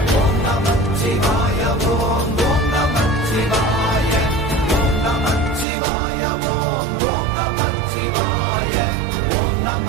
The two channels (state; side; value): drops out; left; at 5.7 s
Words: ஓம் நமச்சிவாய ஓம் ஓம் நமச்சிவாய ஓம் நமச்சிவாய ஓம் ஓம் நமச்சிவாய ஓம்